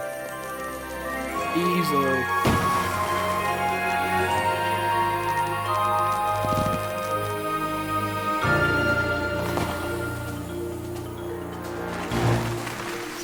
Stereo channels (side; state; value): both; identical; correlation 1.00